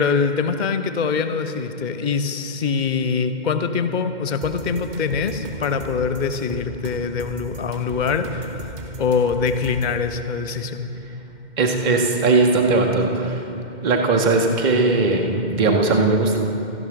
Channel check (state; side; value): late; left; 2.1 ms